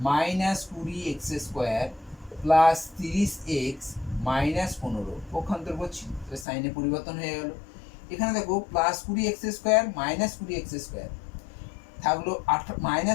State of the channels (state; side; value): drops out; right; at 6.5 s